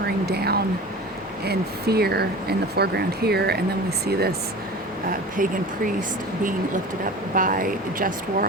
down in fear in the foreground here, and then we see this pagan priest being lifted up by just war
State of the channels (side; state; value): both; normal; correlation 0.36